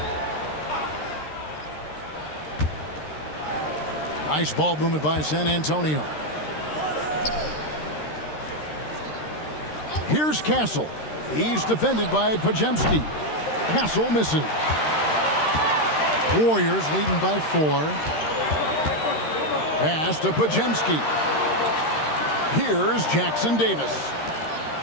Nice ball movement by San Antonio. Here's Castle. He's defended by Podziemski. Castle misses. Warriors leading by 4. Pass to Podziemski. Here's Jackson-Davis.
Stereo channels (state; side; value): late; right; 13 ms